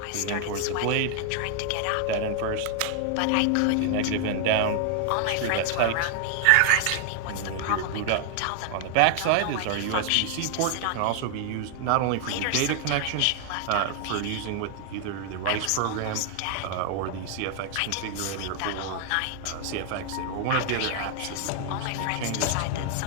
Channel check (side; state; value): both; different; correlation 0.00